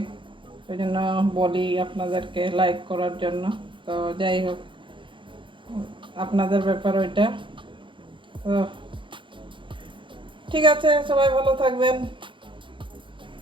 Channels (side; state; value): left; late; 0.24 ms